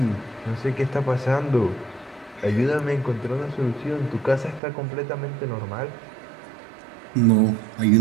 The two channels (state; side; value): drops out; left; at 4.6 s